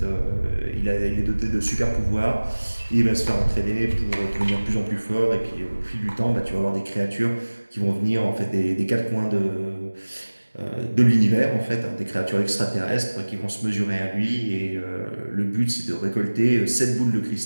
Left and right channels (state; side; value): inverted; both; correlation -1.00